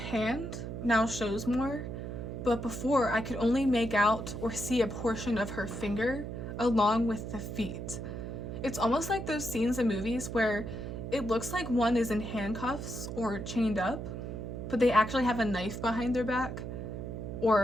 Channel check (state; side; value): noise; right; hum, 6 dB below the sound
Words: now shows more, but before I could only make out or see a portion of her finger along with the feet. It's almost like those scenes in movies where it looks like one is in handcuffs or chained up, but they actually have a knife behind their back or